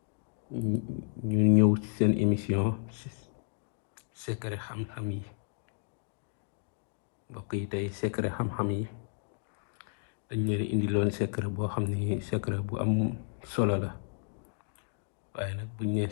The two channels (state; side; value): silent; right; digital silence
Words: ñu ñëw ci seen émission secret xam-xam yi. mbokk yi tey secret xam-xam yi dañ leen indiloon secret boo xam ne secret bu am solo la, waaye nag buñ nee